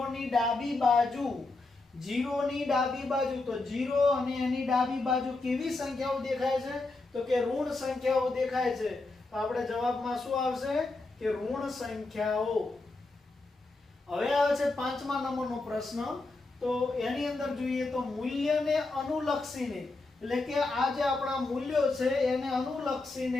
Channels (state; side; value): quieter; right; 3.3 dB